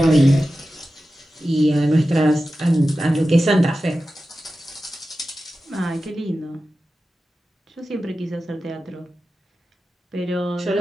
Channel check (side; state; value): both; normal; correlation 0.94